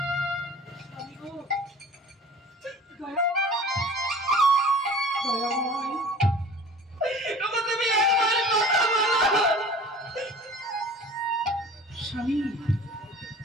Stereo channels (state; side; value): normal; both; correlation 0.44